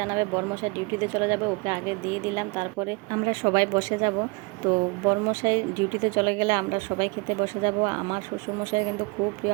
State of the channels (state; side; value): quieter; left; 28.1 dB